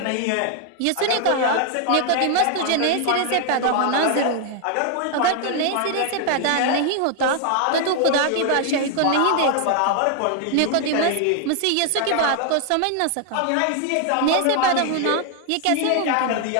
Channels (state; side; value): different; both; correlation 0.00